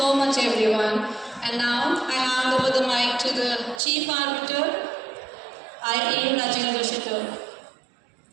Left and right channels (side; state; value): left; drops out; at 3.8 s